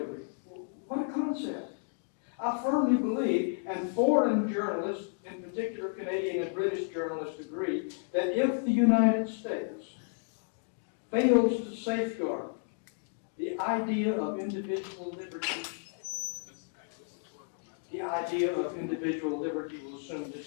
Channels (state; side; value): silent; right; digital silence